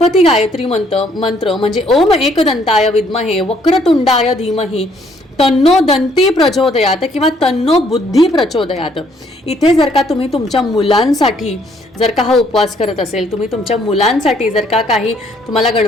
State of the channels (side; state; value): both; normal; correlation 0.66